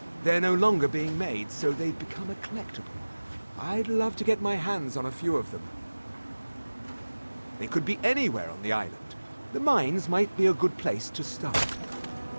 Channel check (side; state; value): both; inverted; correlation -1.00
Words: They're no longer being made, so they've become a collectible. I'd love to get my hands on a few of them. They could be anywhere on the island. The mines might be a good place to start.